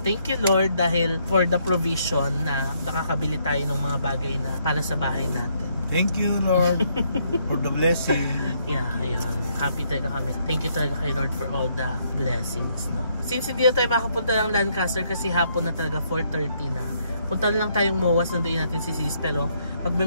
thank you Lord dahil for the provision na nakakabili tayo ng mga bagay na para sa bahay natin. Thank you, Lord, for the blessing. Yeah, ayun. Happy talaga kami. Thank you talaga kay Lord for all the blessings, no? Since hindi na tayo makapunta ng Lancaster kasi hapon na talaga, 4:30 na. Punta na lang tayong MOAS, nandoon natin si Sis, pero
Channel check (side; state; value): both; inverted; correlation -0.72